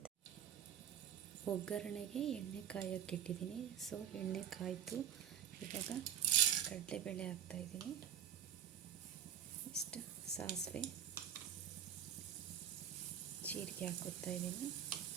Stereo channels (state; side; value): quieter; left; 9.4 dB